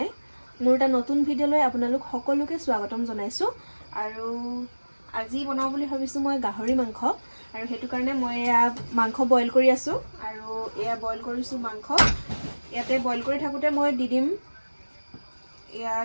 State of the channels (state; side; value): inverted; both; correlation -1.00